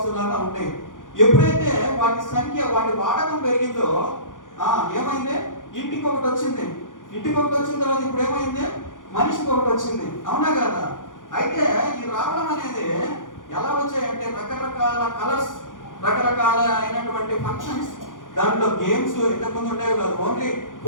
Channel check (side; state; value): right; late; 0.88 ms